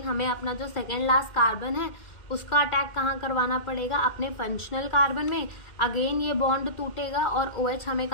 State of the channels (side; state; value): right; late; 2.1 ms